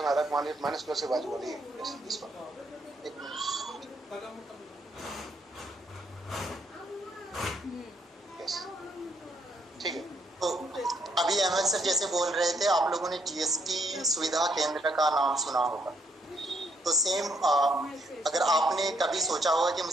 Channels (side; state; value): both; normal; correlation 0.72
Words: आ रहा है माइनस प्लस के बाजू वाली, इस पर ठीक है। तो अभी अहमद सर जैसे बोल रहे थे, आप लोगों ने जीएसटी सुविधा केंद्र का नाम सुना होगा। तो सेम अगर आपने कभी सोचा होगा कि